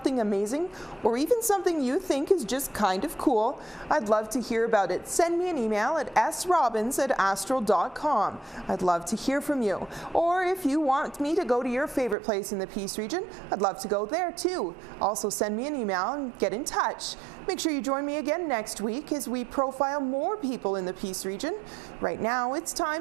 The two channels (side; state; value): left; drops out; at 12.2 s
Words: amazing, or even something you think is just kind of cool, I'd love to hear about it. Send me an email at srobbins@astral.com. I'd love to hear from you. Or if you want me to go to your favorite place in the Peace region, I'd love to go there too. Also send me an email and get in touch. Make sure you join me again next week as we profile more people in the Peace region. Right now, it's